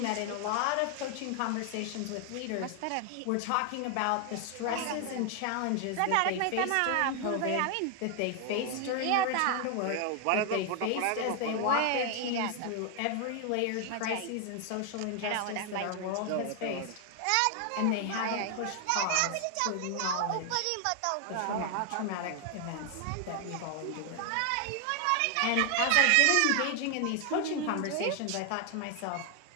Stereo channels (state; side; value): different; both; correlation 0.00